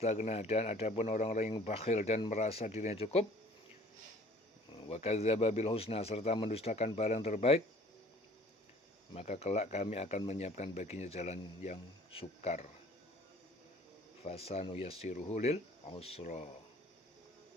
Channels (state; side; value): normal; both; correlation 0.52